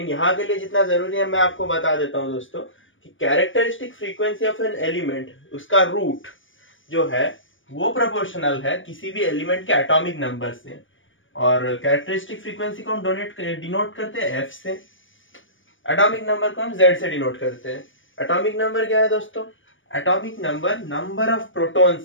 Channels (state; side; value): late; right; 0.57 ms